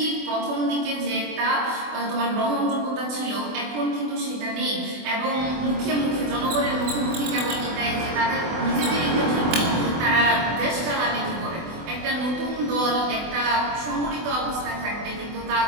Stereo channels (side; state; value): left; late; 24 ms